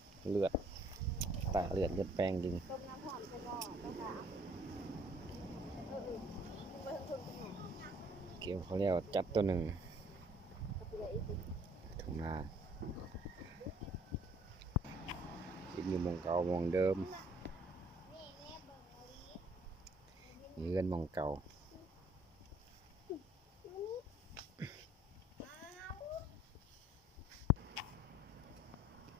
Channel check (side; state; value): both; normal; correlation 0.60